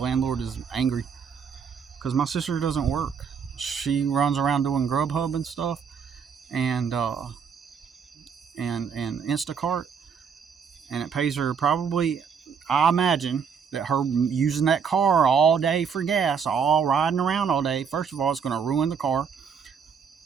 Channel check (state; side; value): quieter; left; 6.6 dB